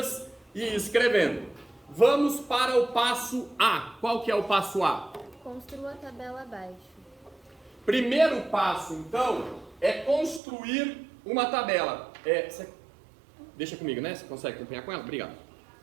e escrevendo. Vamos para o passo A. Qual que é o passo A? Construa a tabela abaixo. Primeiro passo, então, é construir uma tabela. Deixa comigo, né? Você consegue acompanhar com ela? Obrigado.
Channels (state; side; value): drops out; left; at 10.4 s